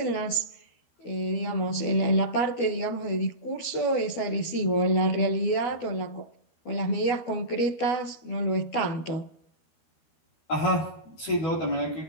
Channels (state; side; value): late; right; 13 ms